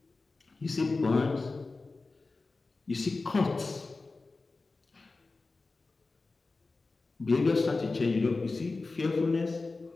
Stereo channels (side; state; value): right; quieter; 3.7 dB